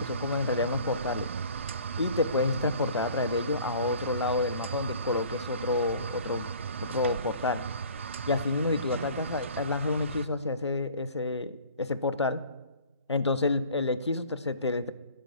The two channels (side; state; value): both; inverted; correlation -0.49